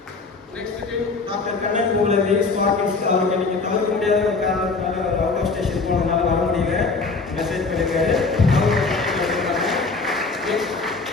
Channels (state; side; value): quieter; right; 4.1 dB